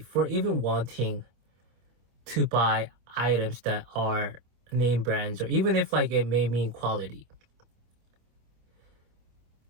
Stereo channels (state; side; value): late; left; 25 ms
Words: even wanting to buy items that are name brands, or even if like it may mean quality.